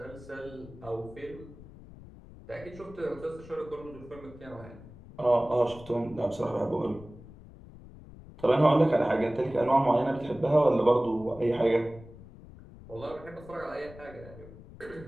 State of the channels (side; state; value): left; noise; rumble, 18 dB below the sound